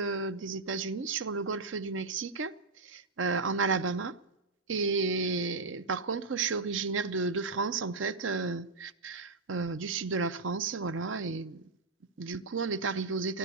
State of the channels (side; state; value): left; quieter; 3.8 dB